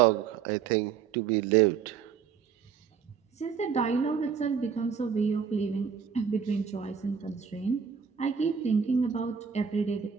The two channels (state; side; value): quieter; left; 6.9 dB